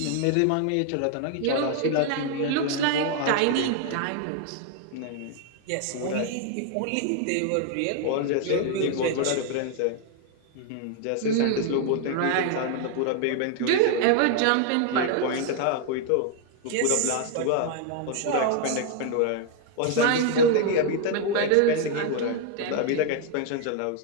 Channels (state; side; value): different; both; correlation 0.00